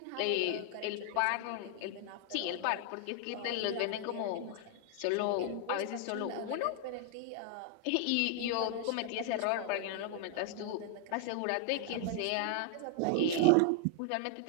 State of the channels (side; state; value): both; different; correlation 0.00